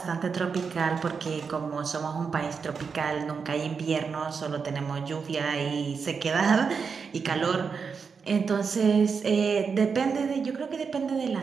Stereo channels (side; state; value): left; quieter; 5.6 dB